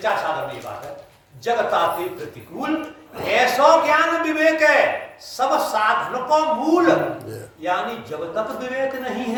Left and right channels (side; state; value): both; identical; correlation 1.00